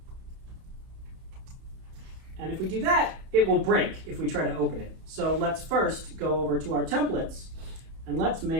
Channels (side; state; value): left; late; 31 ms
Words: And if we do that, it will break if we try to open it. So let's first go over to our templates and let's